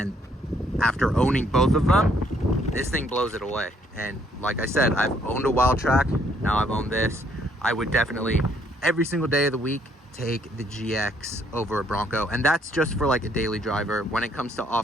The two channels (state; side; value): normal; both; correlation 0.67